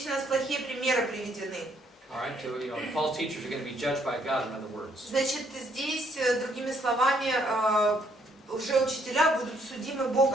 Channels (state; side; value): normal; both; correlation 0.69